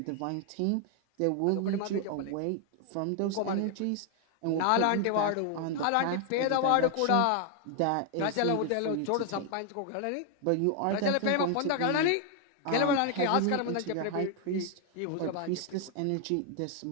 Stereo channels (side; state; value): both; different; correlation 0.00